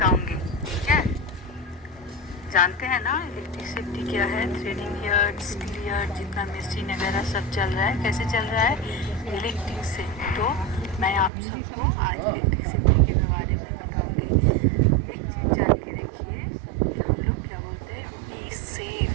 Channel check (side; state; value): left; drops out; at 11.3 s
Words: ठीक है। जानते हैं ना इलेक्ट्रिक सेफ्टी क्या है। थ्रेडिंग यार्ड, स्टील यार्ड, जितना मशीन वगैरह सब चल रहा है, कैसे चल रहा है, इलेक्ट्रिक से। तो मैं आप सबको आज इलेक्ट्रिक सेफ्टी के बारे में बताऊंगी। एक चीज़ जान के रखिए कि हम लोग क्या बोलते हैं, बी